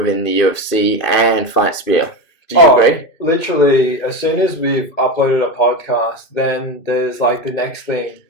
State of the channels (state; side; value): late; right; 2.5 ms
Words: the UFC and Fight Spear. Do you agree? Literally, as soon as we've uploaded a podcast, then there's like the next thing